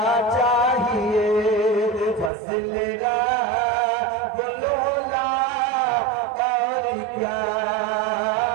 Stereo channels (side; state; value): left; drops out; at 2.3 s